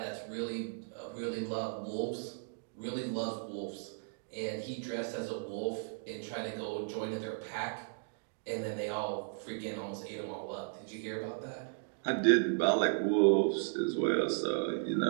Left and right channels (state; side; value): silent; left; digital silence